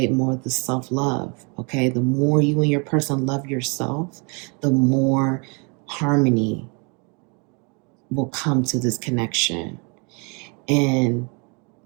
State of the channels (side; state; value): left; quieter; 33.6 dB